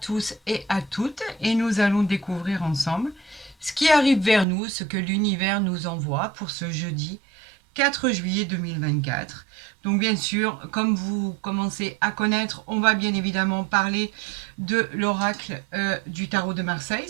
et à toutes et nous allons découvrir ensemble ce qui arrive vers nous, ce que l'univers nous envoie pour ce jeudi 4 juillet 2024. Donc bien sûr, comme vous commencez à connaître, on va bien évidemment parler de l'oracle du tarot de Marseille.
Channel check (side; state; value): left; drops out; at 4.5 s